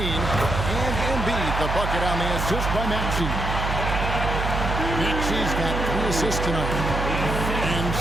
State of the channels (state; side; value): noise; right; hum, 2 dB below the sound